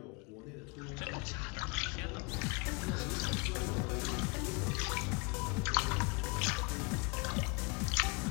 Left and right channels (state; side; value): quieter; right; 31.5 dB